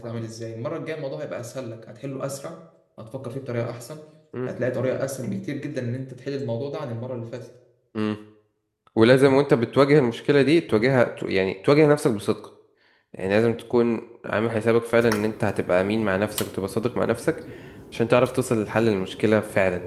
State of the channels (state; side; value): identical; both; correlation 1.00